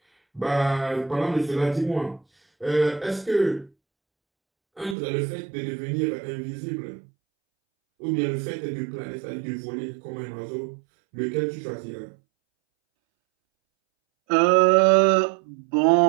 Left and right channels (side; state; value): left; drops out; at 5.0 s